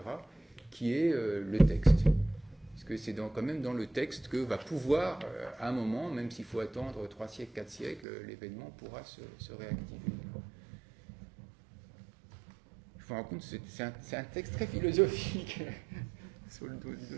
qui est le texte. Parce que c'est quand même dans le texte que va pouvoir, à un moment, même s'il faut attendre 3 siècles, 4 siècles, l'événement pourra se réactiver. Je me rends compte, c'est un texte très philosophique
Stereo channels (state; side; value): drops out; left; at 8.1 s